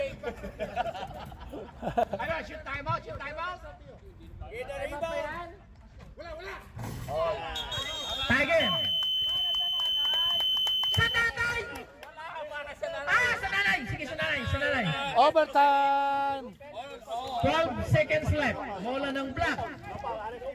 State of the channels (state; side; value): identical; both; correlation 1.00